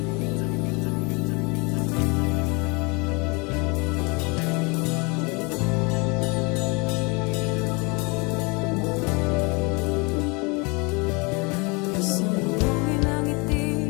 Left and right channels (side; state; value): right; quieter; 29.2 dB